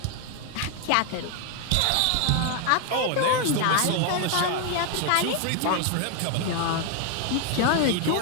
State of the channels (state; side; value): different; both; correlation 0.01